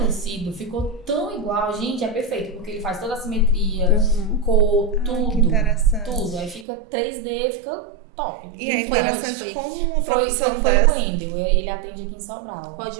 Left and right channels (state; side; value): drops out; left; at 6.7 s